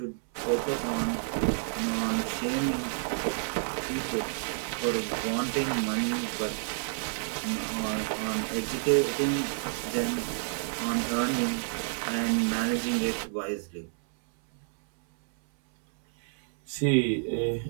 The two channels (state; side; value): silent; left; 58 dB below the other